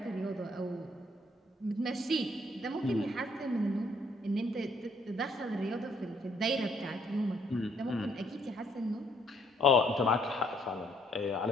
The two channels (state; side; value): normal; both; correlation 0.67